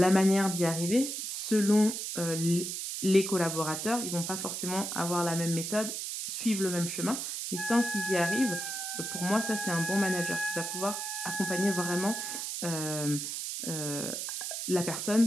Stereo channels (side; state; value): right; noise; hiss, 4 dB below the sound